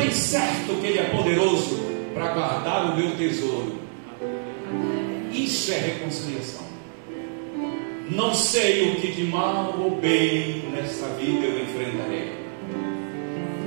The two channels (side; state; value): left; silent; digital silence